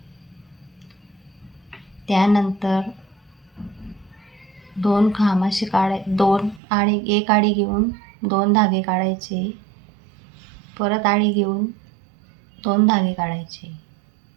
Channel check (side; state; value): left; drops out; at 6.6 s